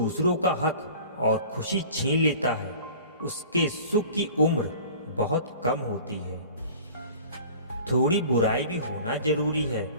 का हक और खुशी छीन लेता है उसके सुख की उम्र बहुत कम होती है। थोड़ी बुराई भी होना जरूरी है,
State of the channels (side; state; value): both; inverted; correlation -0.44